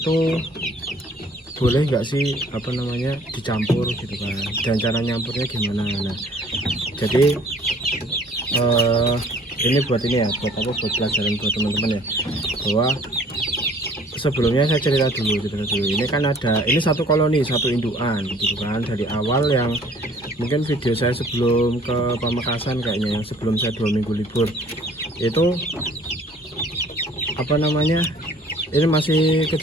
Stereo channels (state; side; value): normal; both; correlation 0.54